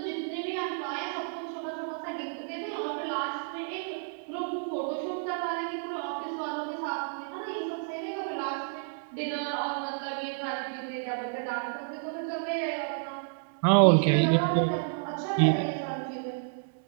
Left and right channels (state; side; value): silent; left; digital silence